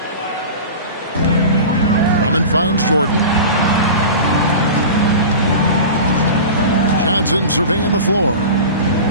Drummond finds Jordan. Johnson surveying the floor.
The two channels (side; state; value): both; inverted; correlation -0.32